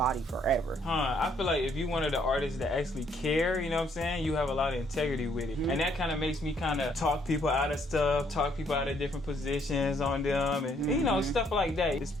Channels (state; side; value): normal; both; correlation 0.68